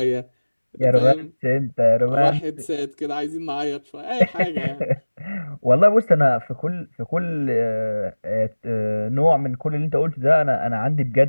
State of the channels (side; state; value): both; inverted; correlation -1.00